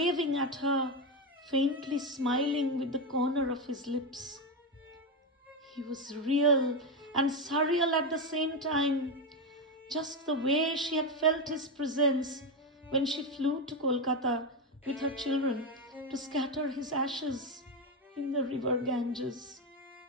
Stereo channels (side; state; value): both; normal; correlation 0.11